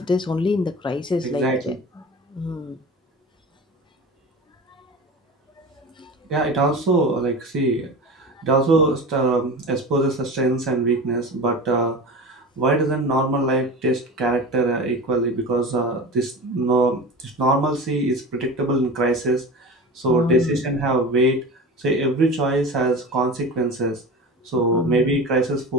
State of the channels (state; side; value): normal; both; correlation 0.32